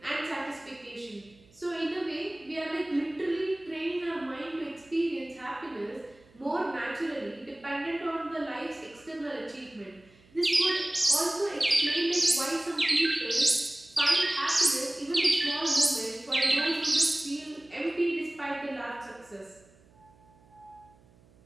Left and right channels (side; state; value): right; noise; hum, 28 dB below the sound